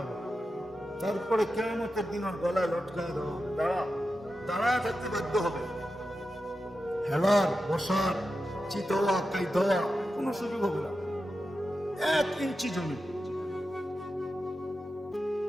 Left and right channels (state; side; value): normal; both; correlation 0.91